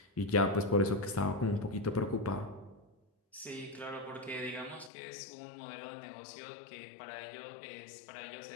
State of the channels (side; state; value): right; drops out; at 4.9 s